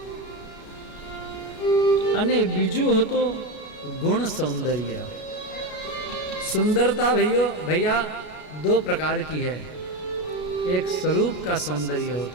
અને બીજું હતો गुण सौंदर्य. सुंदरता भैया 2 प्रकार की है. एक स्वरूप का सौंदर्य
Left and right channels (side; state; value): right; late; 33 ms